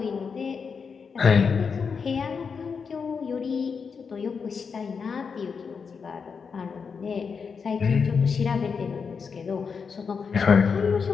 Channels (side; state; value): right; quieter; 5.8 dB